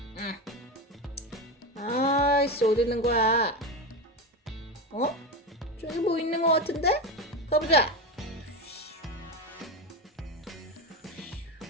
아이씨, 어디 있는 거야? 저기 뭐 있는 거 같은데? 가보자.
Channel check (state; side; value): normal; both; correlation 0.18